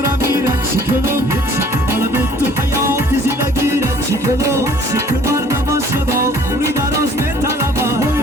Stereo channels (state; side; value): normal; both; correlation 0.55